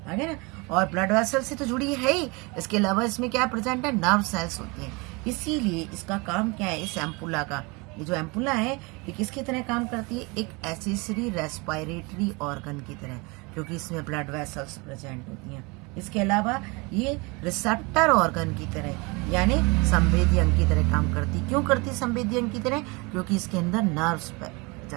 आगे ना। और ब्लड वेसल से तो जुड़ी है ही, इसके अलावा इसमें क्या प्रेजेंट है? नर्व सेल्स होती हैं। इसीलिए इसका काम क्या है? इस एम्पुला का, ये जो एम्पुला है ये किसकी तरह काम करती है? एक एसेसरी रेस्पिरेटरी ऑर्गन की तरह, क्योंकि इसमें ब्लड वेसल्स प्रेजेंट होती हैं। इसके अलावा ये रिसेप्टर ऑर्गन की तरह यानी संवेदी अंग की तरह काम करती। क्यों करती संवेदी अंग की तरह? क्योंकि इसके अंदर नर्व्स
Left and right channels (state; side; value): quieter; left; 27.5 dB